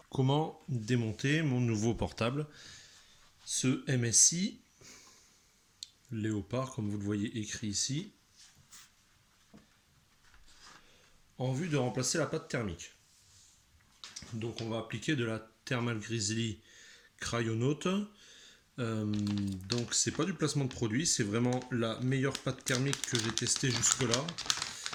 comment démonter mon nouveau portable, ce MSI Léopard, comme vous le voyez écrit ici, en vue de remplacer la pâte thermique. Donc on va appliquer de la Thermal Grizzly Cryonaut. Donc c'est pas du placement de produit, c'est vraiment la meilleure pâte thermique que j'ai testée jusque là.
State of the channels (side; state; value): both; identical; correlation 1.00